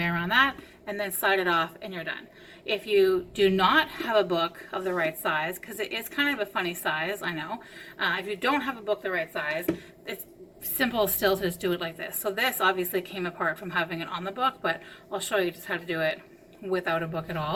around that and then slide it off and you're done. If you do not have a book of the right size, because it is kind of a funny size, I know. If you don't have a book the right size, it's simple still to just do it like this. So this obviously came apart from having it on the book, but I'll show you just how to do it without a book at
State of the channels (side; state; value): both; identical; correlation 1.00